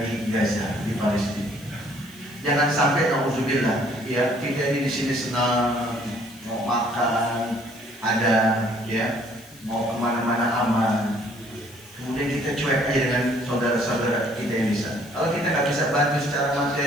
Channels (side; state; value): left; noise; hiss, 23 dB below the sound